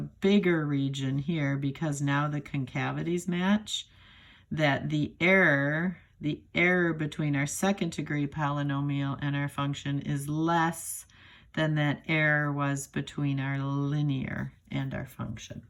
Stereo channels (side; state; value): both; identical; correlation 1.00